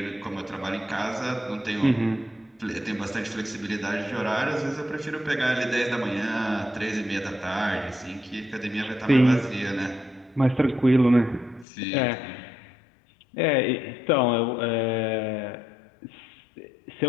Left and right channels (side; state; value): right; drops out; at 11.7 s